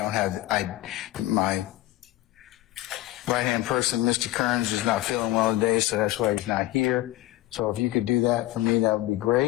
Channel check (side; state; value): right; quieter; 16.4 dB